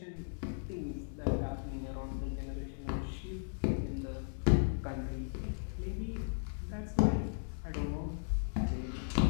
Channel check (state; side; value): silent; right; digital silence